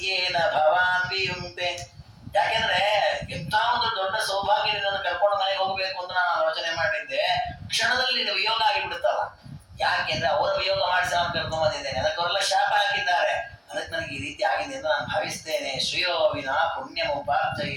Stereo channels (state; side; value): identical; both; correlation 1.00